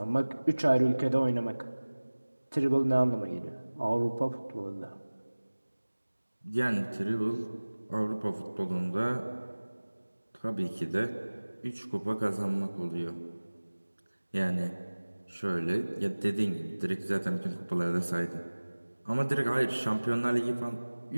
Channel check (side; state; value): both; inverted; correlation -1.00